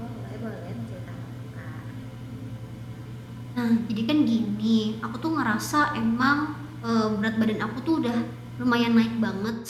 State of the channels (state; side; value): identical; both; correlation 1.00